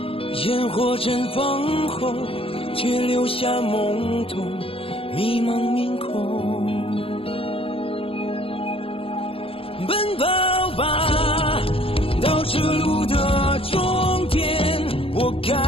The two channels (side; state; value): right; late; 0.27 ms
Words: 烟火绽放后，却留下懵懂迷茫面孔。奔跑吧！ 到这路的终点，我